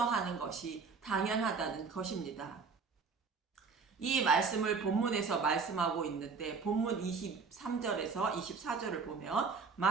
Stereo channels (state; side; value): quieter; left; 5.0 dB